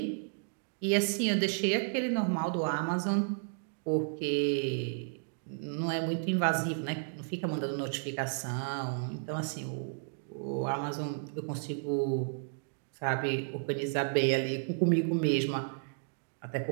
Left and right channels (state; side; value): silent; left; digital silence